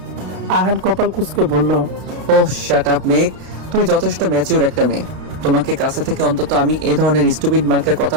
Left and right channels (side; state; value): left; late; 32 ms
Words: আহান কপাল কুঁচকে বলল, ও শাট আপ মেক, তুমি যথেষ্ট ম্যাচিউর একটা মেয়ে। তোমাকে কাছে থেকে অন্তত আমি এই ধরনের স্টুপিড মার্কের